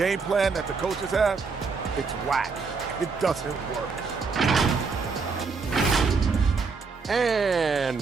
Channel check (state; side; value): quieter; left; 4.8 dB